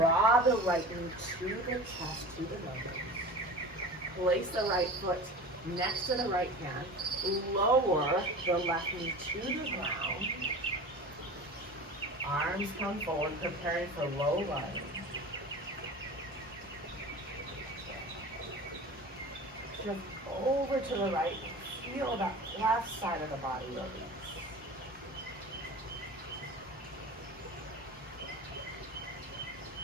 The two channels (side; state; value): both; normal; correlation 0.35